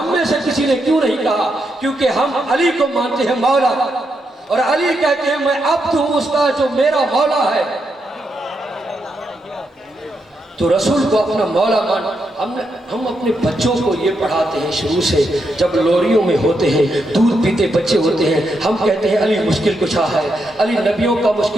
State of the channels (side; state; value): both; normal; correlation 0.82